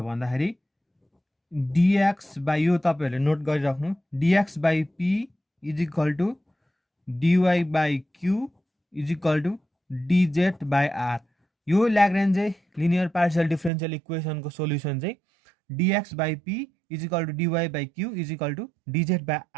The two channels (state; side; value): drops out; left; at 13.7 s